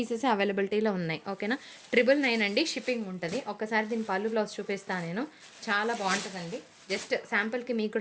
అవైలబిలిటీలో ఉన్నాయి, ఓకేనా. 999 అండి, షిప్పింగ్ ఉంటుంది. ఒకసారి దీని పళ్ళు బ్లౌజ్ చూపిస్తాను నేను, చాలా బాగుంటుందండి. జస్ట్ శాంపుల్కి మీకు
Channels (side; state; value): both; identical; correlation 1.00